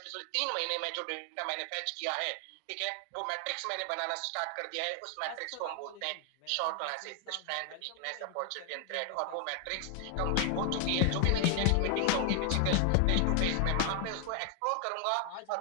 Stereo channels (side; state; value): both; different; correlation 0.00